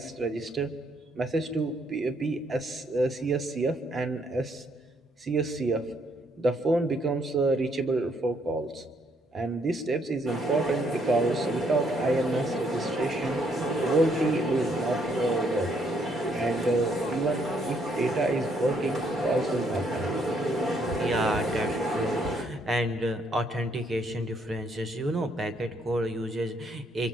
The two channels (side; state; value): both; normal; correlation 0.71